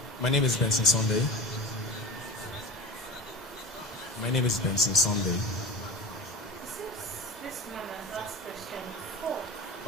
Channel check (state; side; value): normal; both; correlation 0.31